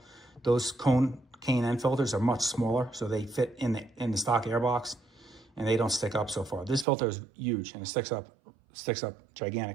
those cone K&N filters are much smaller, so they fit in the stock air box, and they don't stick up so far. This filter is huge, and it sticks up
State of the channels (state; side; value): drops out; left; at 6.9 s